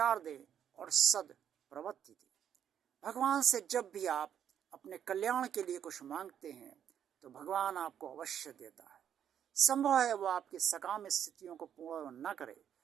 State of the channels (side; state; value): left; quieter; 9.2 dB